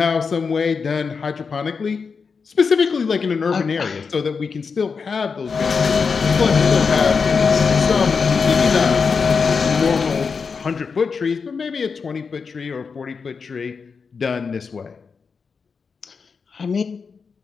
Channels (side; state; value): right; quieter; 5.3 dB